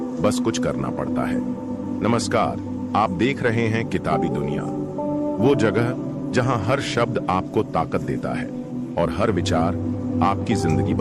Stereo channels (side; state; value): both; identical; correlation 1.00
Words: बस कुछ करना पड़ता है। नमस्कार, आप देख रहे हैं किताबी दुनिया, वो जगह जहां हर शब्द आपको ताकत देता है और हर विचार आपकी जिंदगी